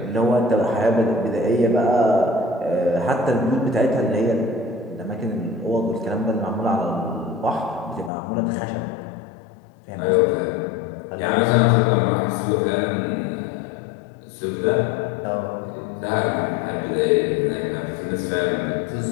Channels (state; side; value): drops out; right; at 8.1 s